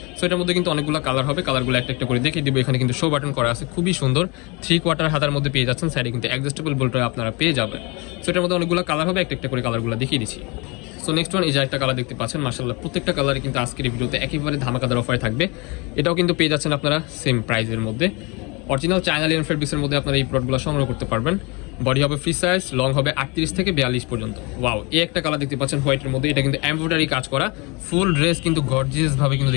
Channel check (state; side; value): quieter; right; 28.3 dB